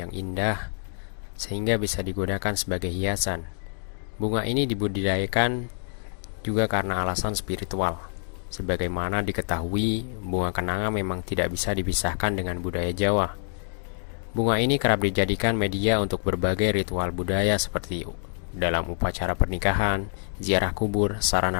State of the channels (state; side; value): silent; right; 61 dB below the other